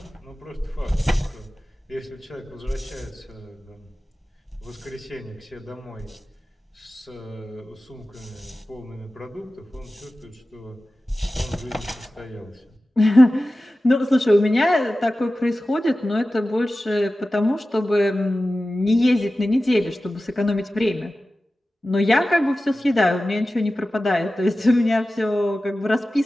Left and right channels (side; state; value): both; normal; correlation 0.95